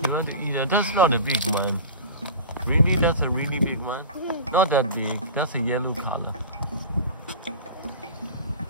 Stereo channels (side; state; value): both; inverted; correlation -0.34